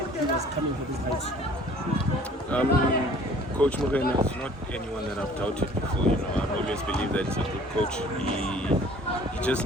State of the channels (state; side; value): normal; both; correlation 0.52